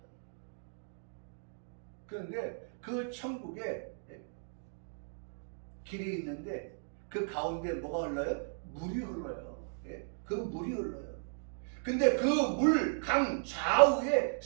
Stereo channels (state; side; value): silent; left; digital silence